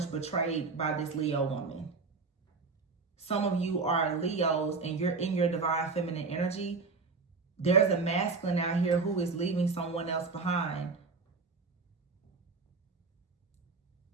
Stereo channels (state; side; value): quieter; left; 4.4 dB